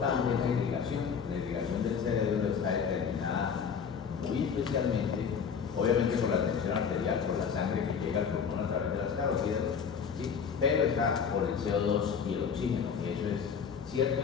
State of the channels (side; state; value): right; quieter; 6.7 dB